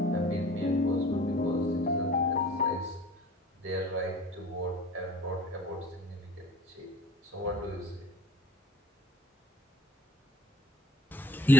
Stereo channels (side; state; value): both; normal; correlation 0.48